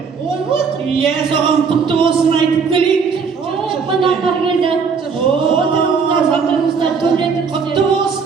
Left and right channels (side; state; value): left; quieter; 5.6 dB